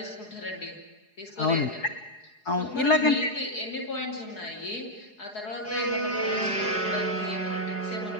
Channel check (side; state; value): right; late; 4.8 ms